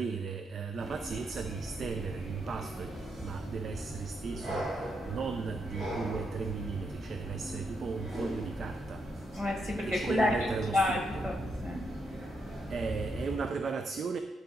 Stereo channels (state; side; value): normal; both; correlation 0.80